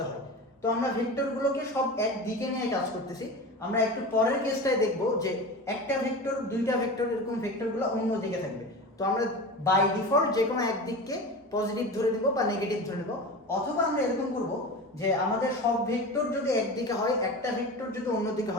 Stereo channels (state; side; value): normal; both; correlation 0.30